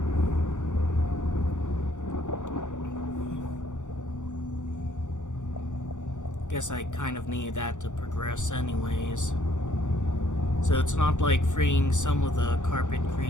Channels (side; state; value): right; late; 0.85 ms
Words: Guess I kind of need that to progress anyways. So it's not like freeing some of the carpet